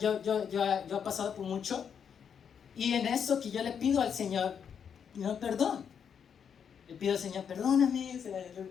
he pasado por mucho. Y en eso que yo le pido al Señor, no, perdón. Le pido al Señor, perdóname. O sea,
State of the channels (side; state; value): right; quieter; 7.4 dB